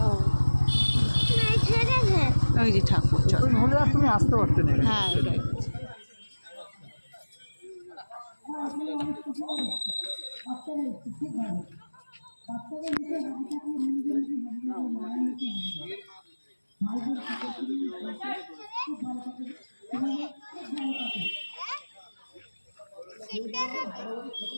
ওই যে ঠাকুর, হলে আর তুমি আসতে পারতে না। হ্যাঁ ওটাই।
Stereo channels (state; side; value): inverted; both; correlation -1.00